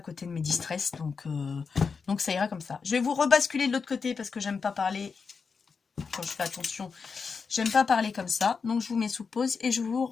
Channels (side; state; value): right; quieter; 5.3 dB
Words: de mes distress, donc ça ira comme ça. Je vais vous rebasculer de l'autre côté parce que j'aime pas parler, quand je fais attention, j'aime pas parler comme ça. Donc je vous mets sous pause et je vous